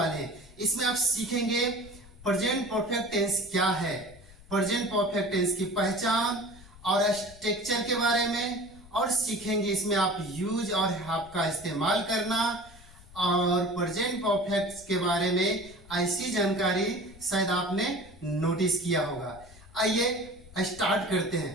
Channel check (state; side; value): noise; left; rumble, 22 dB below the sound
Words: हैं। इसमें आप सीखेंगे प्रेजेंट परफेक्ट टेंस क्या है, प्रेजेंट परफेक्ट टेंस की पहचान और स्ट्रक्चर के बारे में, और सीखेंगे इसमें आप यूज और हैव का इस्तेमाल करना, और प्रेजेंट परफेक्ट के बारे में ऐसी जानकारी शायद आपने नोटिस किया होगा। आइए स्टार्ट करते हैं।